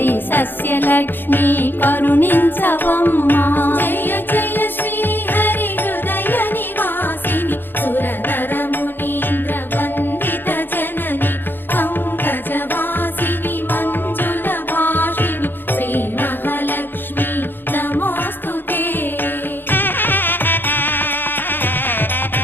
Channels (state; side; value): late; right; 0.097 ms